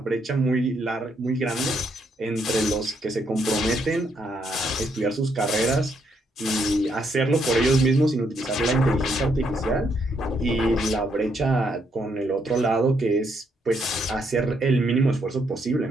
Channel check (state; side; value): normal; both; correlation 0.75